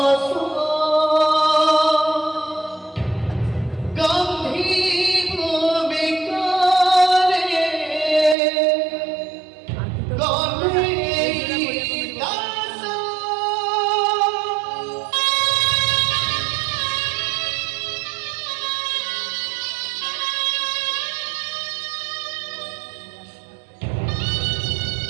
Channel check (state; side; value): drops out; left; at 8.3 s